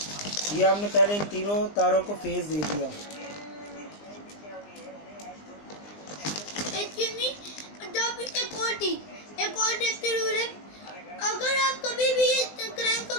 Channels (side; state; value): right; late; 20 ms